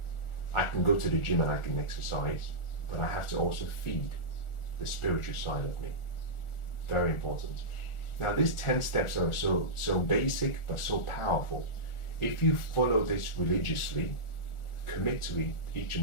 I can go to the gym and I can exercise, but I have to also feed the spiritual side of me. Very important. Now, these 10 steps are so basic but so powerful. If you follow this religiously, commit to each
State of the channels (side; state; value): right; late; 1.4 ms